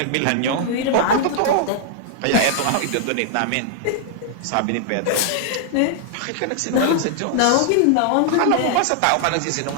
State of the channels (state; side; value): different; both; correlation -0.01